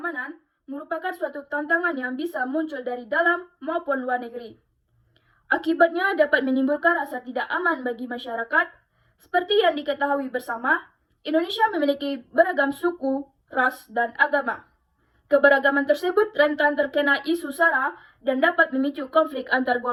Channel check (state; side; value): identical; both; correlation 1.00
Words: merupakan suatu tantangan yang bisa muncul dari dalam maupun luar negeri. Akibatnya dapat menimbulkan rasa tidak aman bagi masyarakat. Seperti yang diketahui bersama, Indonesia memiliki beragam suku, ras, dan agama. Keberagaman tersebut rentan terkena isu sara dan dapat memicu konflik antar